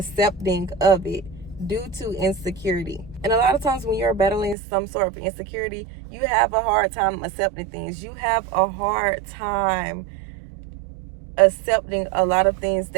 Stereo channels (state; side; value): drops out; left; at 4.5 s